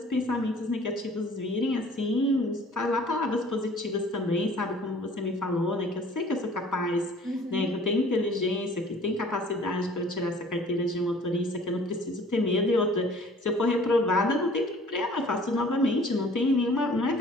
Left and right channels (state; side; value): normal; both; correlation 0.51